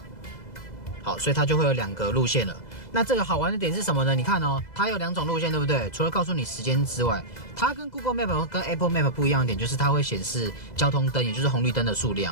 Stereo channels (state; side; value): late; right; 2.0 ms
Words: 好，所以它就会有2個路線了。那這個好玩的點是什麼呢？你看哦，它有2種路線，對不對？除了告訴你時間之外，它跟 Google Map 跟 Apple Map 不一樣的點就是它會顯示交通燈，也就是紅綠燈的數